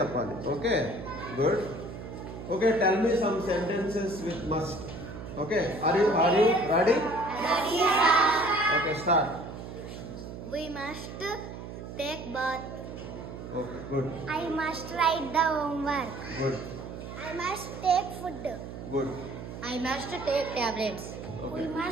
Okay, good. Okay, tell me some sentences with must. Okay, are you ready? Okay, start. We must take bath. Okay, good. I must write the homework. Good. I must take food. Good. I must take tablets. Okay. We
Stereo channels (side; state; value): right; noise; hum, 10 dB below the sound